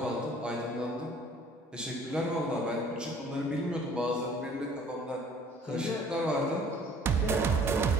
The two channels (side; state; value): both; normal; correlation 0.54